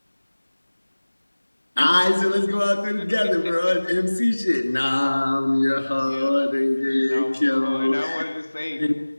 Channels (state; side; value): inverted; both; correlation -1.00